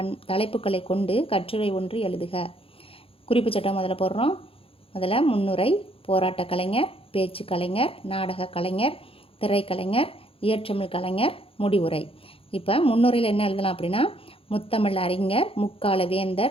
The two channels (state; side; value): late; right; 0.27 ms